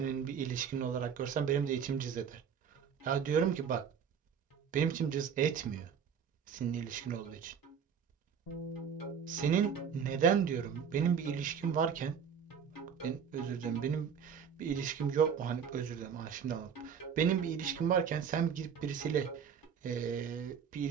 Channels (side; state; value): left; quieter; 7.2 dB